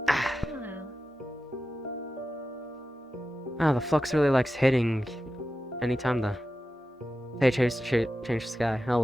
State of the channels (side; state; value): both; normal; correlation 0.92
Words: Ah, the flux really likes hitting anytime the they change the sky.